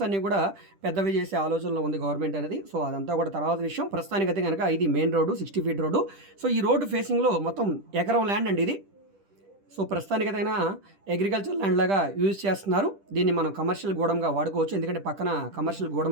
అన్నీ కూడా పెద్దవి చేసే ఆలోచనలో ఉంది గవర్నమెంట్ అనేది. సో అదంతా కూడా తర్వాత విషయం. ప్రస్తుతానికైతే కనుక ఇది main road, 60 feet road. So ఈ రోడ్డు ఫేసింగ్లో మొత్తం ఎకరం ల్యాండ్ అండి ఇది. సో ప్రస్తుతానికైనా అగ్రికల్చర్ ల్యాండ్ లాగా యూజ్ చేస్తున్నారు. దీన్ని మనం కమర్షియల్ గోడంగా వాడుకోవచ్చు, ఎందుకంటే పక్కన కమర్షియల్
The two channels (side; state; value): left; late; 10 ms